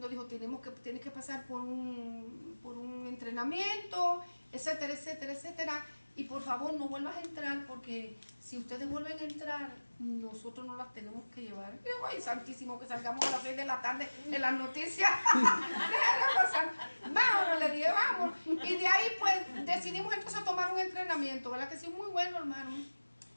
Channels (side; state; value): both; inverted; correlation -1.00